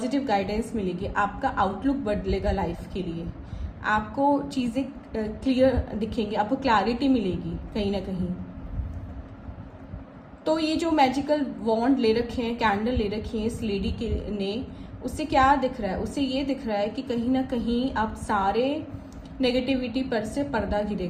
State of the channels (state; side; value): identical; both; correlation 1.00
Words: गाइडेंस मिलेगी, आपका आउटलुक बदलेगा लाइफ के लिए, आपको चीज़ें क्लियर दिखेंगी, आपको क्लैरिटी मिलेगी कहीं ना कहीं। तो ये जो मैजिकल वॉन्ड ले रखे हैं, कैंडल ले रखी है इस लेडी के ने, उससे क्या दिख रहा है? उससे ये दिख रहा है कि कहीं ना कहीं अब सारे नेगेटिविटी पर से पर्दा